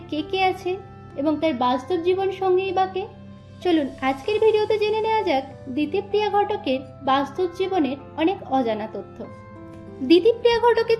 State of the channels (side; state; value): both; identical; correlation 1.00